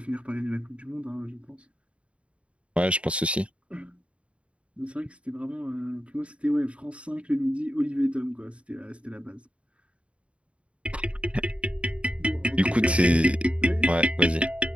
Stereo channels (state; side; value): late; left; 0.061 ms